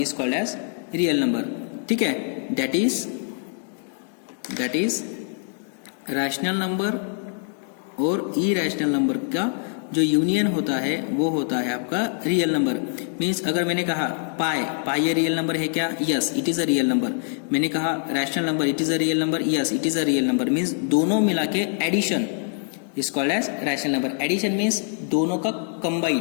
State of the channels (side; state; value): right; silent; 55 dB below the other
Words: is called as real number. ठीक है, that is rational number और irrational number का जो यूनियन होता है वो होता है आपका रियल नंबर. मीन्स अगर मैंने कहा पाई ये रियल नंबर है क्या? Yes, it is a real number. मैंने कहा rational number, it is a real number. Yes, it is a real number. Means दोनों मिला के addition is called as rational number. Addition means दोनों का